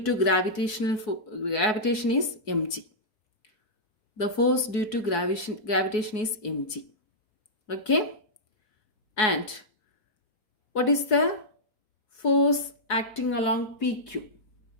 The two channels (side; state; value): right; late; 4.7 ms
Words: to gravitation is mg. the force due to gravitation is mg. Okay, and what is the force acting along PQ?